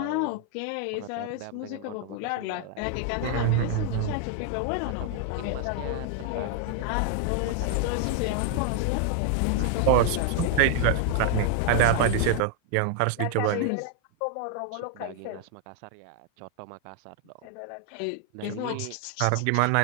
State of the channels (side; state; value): both; different; correlation 0.00